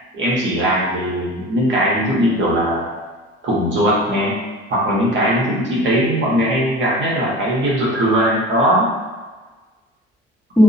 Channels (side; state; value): both; normal; correlation 0.36